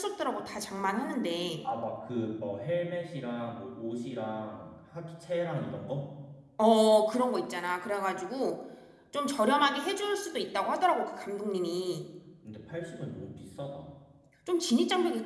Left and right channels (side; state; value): both; identical; correlation 1.00